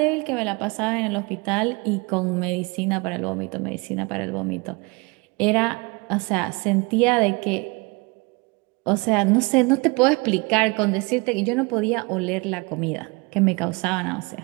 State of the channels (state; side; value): quieter; left; 27.5 dB